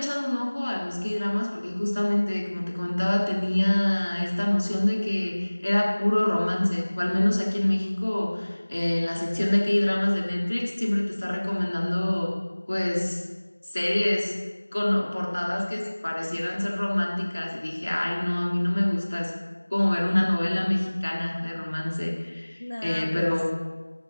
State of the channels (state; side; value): inverted; both; correlation -1.00